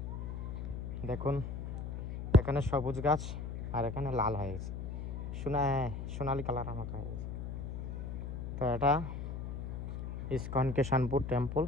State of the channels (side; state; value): left; noise; hum, 5 dB below the sound